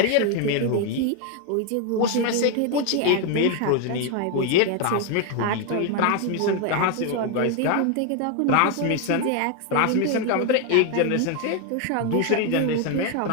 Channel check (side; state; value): both; different; correlation 0.01